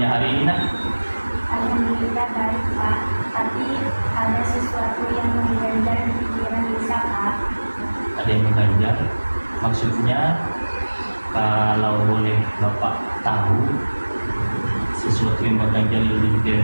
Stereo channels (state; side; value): inverted; both; correlation -1.00